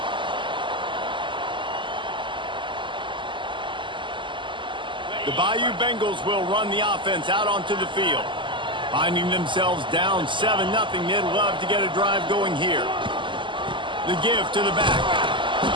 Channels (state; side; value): late; left; 0.24 ms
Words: The Bayou Bengals will run the offense out onto the field. Finding themselves down 7-0, they'd love to get a drive going here. The give to the back.